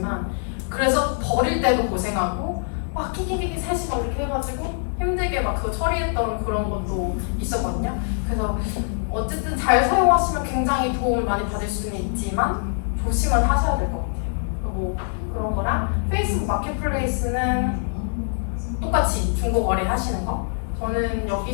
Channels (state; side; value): silent; right; 63 dB below the other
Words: 그래서 버릴 때도 고생하고 막 끼끼끼끼 3시간 이렇게 해가지고 힘들게 막 그거 처리했던 그런 것도 있었거든요. 그래서 어쨌든 잘 사용하시면 굉장히 도움을 많이 받을 수는 있지만 조심은 하셔야 될 것 같아요. 뭐 그런 거랑 페이스북 마켓플레이스는 똑같이 중고 거래 하시는 거. 저는